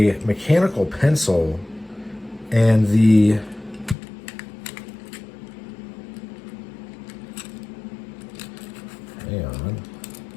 mechanical pencil, and hang on.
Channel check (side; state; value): right; drops out; at 4.0 s